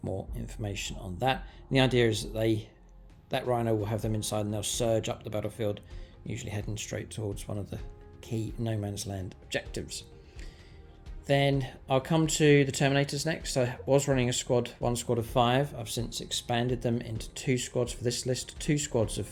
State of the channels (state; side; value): identical; both; correlation 1.00